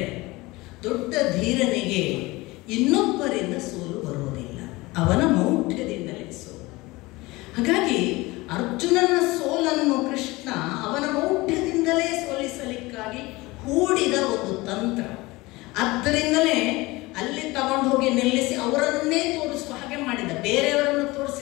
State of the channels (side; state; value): right; quieter; 21.6 dB